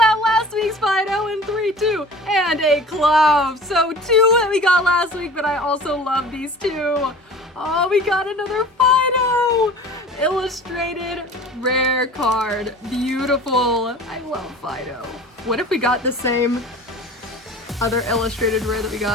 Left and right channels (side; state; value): both; normal; correlation 0.41